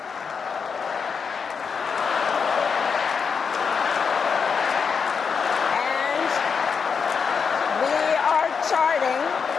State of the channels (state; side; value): quieter; right; 6.0 dB